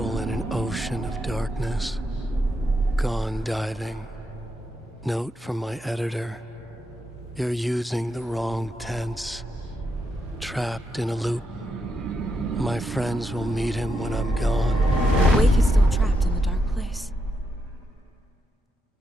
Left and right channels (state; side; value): normal; both; correlation 0.82